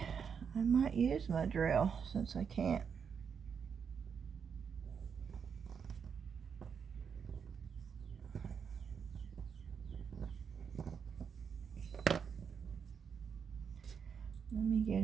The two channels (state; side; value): quieter; left; 6.7 dB